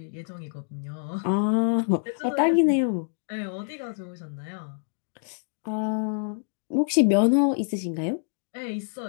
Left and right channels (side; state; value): right; silent; digital silence